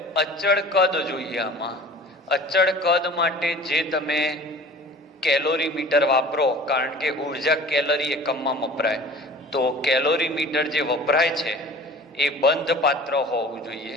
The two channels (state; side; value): normal; both; correlation 0.43